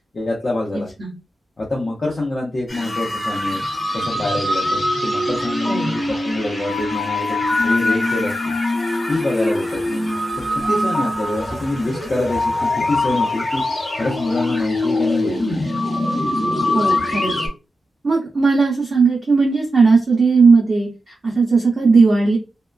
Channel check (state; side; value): normal; both; correlation 0.90